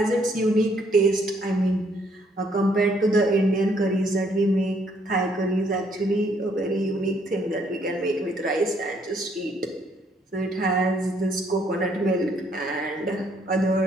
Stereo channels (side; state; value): both; normal; correlation 0.68